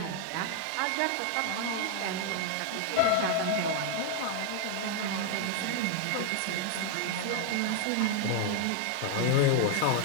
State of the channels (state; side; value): different; both; correlation 0.00